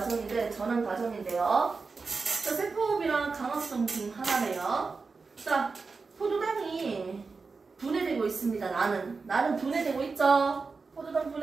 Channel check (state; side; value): quieter; left; 4.4 dB